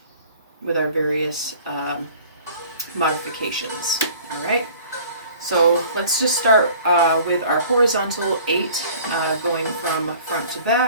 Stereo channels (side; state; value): both; inverted; correlation -0.49